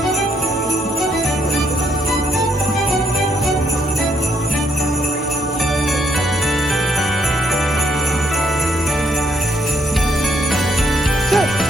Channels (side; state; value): both; normal; correlation 0.73